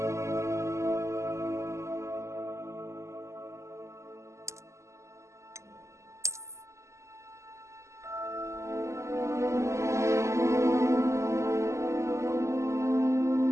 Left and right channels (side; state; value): left; late; 0.14 ms